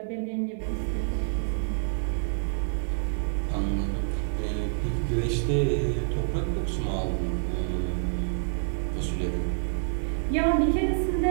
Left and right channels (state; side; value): silent; left; 60 dB below the other